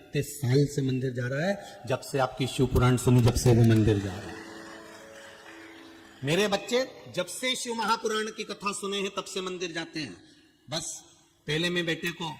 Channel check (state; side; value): identical; both; correlation 1.00